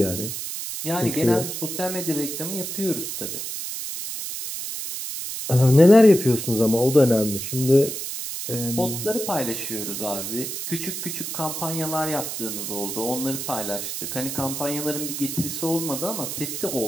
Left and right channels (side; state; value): right; noise; hiss, 5 dB below the sound